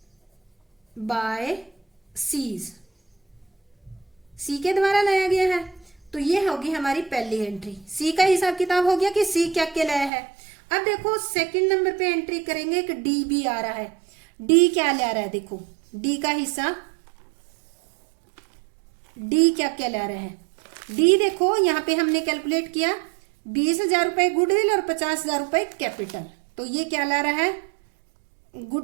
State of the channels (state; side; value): drops out; left; at 10.1 s